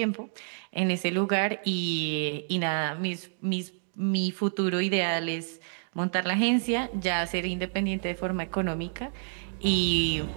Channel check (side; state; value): left; silent; digital silence